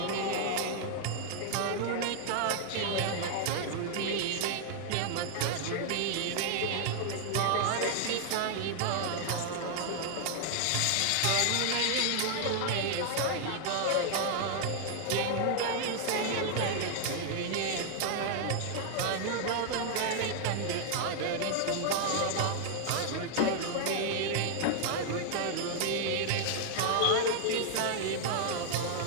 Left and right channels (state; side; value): different; both; correlation 0.00